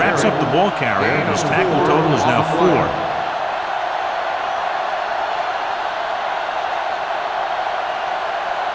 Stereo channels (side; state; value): both; identical; correlation 1.00